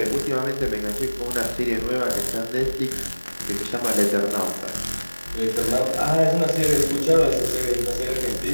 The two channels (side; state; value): both; inverted; correlation -1.00